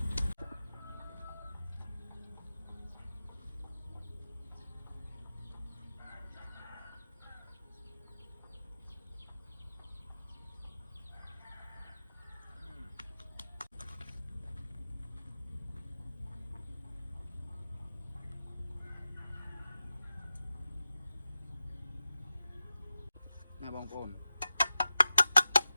ណាបងប្អូន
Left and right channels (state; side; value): inverted; both; correlation -0.93